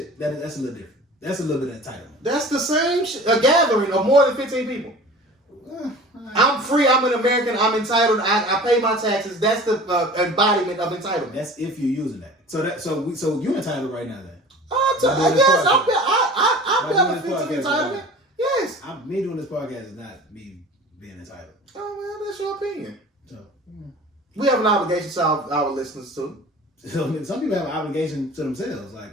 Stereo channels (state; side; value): normal; both; correlation 0.41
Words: that's a little different. That's a little bit of entitlement. That's the same shit. A gathering of more than 15 people. I'm free. I'm an American. I'm entitled. I pay my taxes. That's the embodiment of entitlement. That's if you're using that. So you're entitled right now then. Yes, I benefit from entitlement. Yes. Me doing this podcast is not me being entitled. Oh well, that's your opinion. So we have an obligation to our listeners too. Some people have an obligation to themselves,